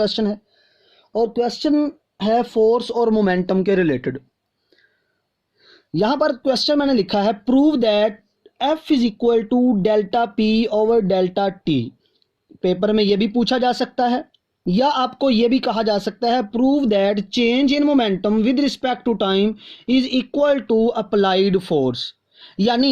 है। और क्वेश्चन है फोर्स और मोमेंटम के रिलेटेड। यहाँ पर क्वेश्चन मैंने लिखा है, prove that F is equal to delta P over delta T. Paper में ये भी पूछा जा सकता है या आपको ये भी कहा जा सकता है, prove that change in momentum with respect to time is equal to applied force.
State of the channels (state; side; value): identical; both; correlation 1.00